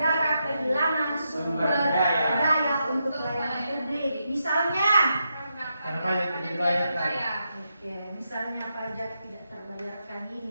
kehilangan sumber daya untuk pelayanan publik. Misalnya, Karena pajak tidak dibayarkan. oke, misalnya pajak tidak terbayarkan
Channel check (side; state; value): both; inverted; correlation -0.84